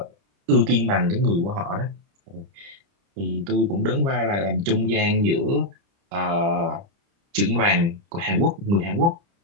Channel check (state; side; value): late; left; 30 ms